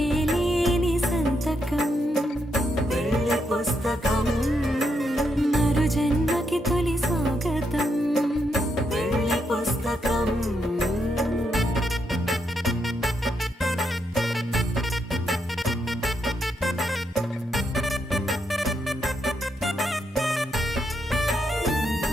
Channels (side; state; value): both; normal; correlation 0.80